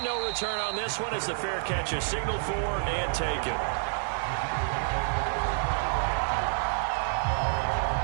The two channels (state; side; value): silent; left; 59 dB below the other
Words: no return on this one as the fair catch is signaled for and taken.